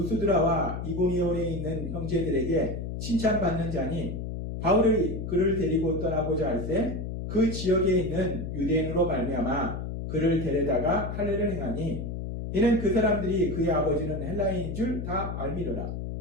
이고니온에 있는 형제들에게 칭찬받는 자니 바울이 그를 데리고 떠나고자 할 때 그 지역에 있는 유대인으로 말미암아 그를 데려다가 할례를 행하니 이는 그 사람들이 그의 아버지는 헬라인인 줄 다 알미러라.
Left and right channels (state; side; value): noise; left; hum, 5 dB below the sound